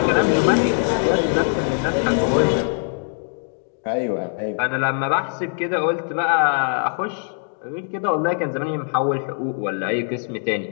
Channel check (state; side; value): silent; right; 64 dB below the other